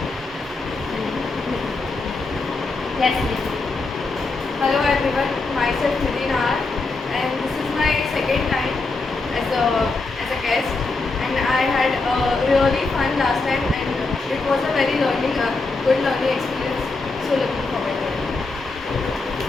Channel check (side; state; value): right; quieter; 3.7 dB